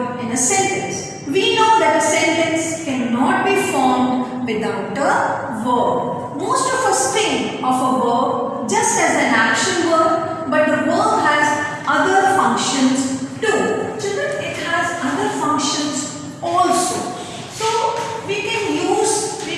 in a sentence. We know that a sentence cannot be formed without a verb. Most of us think of a verb just as an action word, but the verb has other functions too. Children, it has other functions also. So we can use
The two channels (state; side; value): identical; both; correlation 1.00